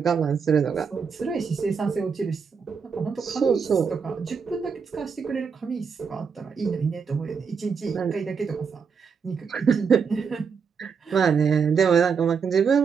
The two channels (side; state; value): left; quieter; 6.0 dB